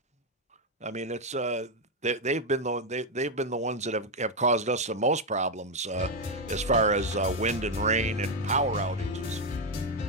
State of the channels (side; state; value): both; normal; correlation 0.04